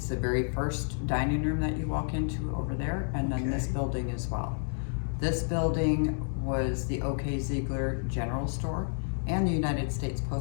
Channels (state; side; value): silent; right; 58 dB below the other